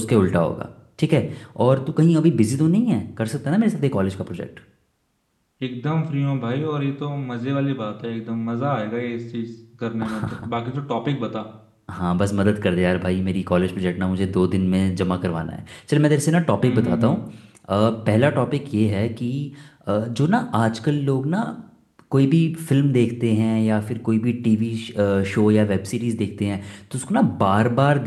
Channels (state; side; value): identical; both; correlation 1.00